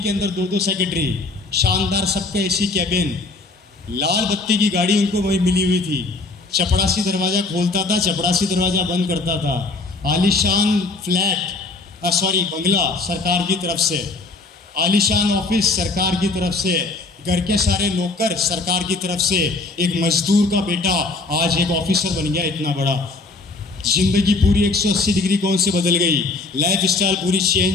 अंदर 2-2 सेक्रेटरी, शानदार सबका एसी कैबिन, लाल बत्ती की गाड़ी उनको वही मिली हुई थी। चपड़ासी दरवाज़ा खोलता था, चपड़ासी दरवाज़ा बंद करता था। आलीशान बंगला सरकार की तरफ से, आलीशान ऑफिस सरकार की तरफ से, घर के सारे नौकर सरकार की तरफ से। एक मजदूर का बेटा आज एक ऑफिसर बन गया इतना बड़ा। जिंदगी पूरी 180 डिग्री कौन से बदल गई, लाइफ स्टाइल पूरी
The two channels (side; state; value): right; quieter; 3.7 dB